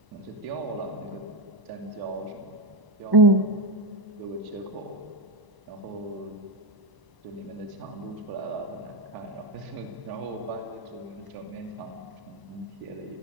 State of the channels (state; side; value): late; left; 1.0 ms